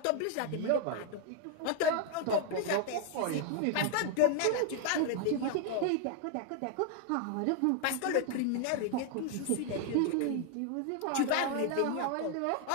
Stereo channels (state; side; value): different; both; correlation 0.00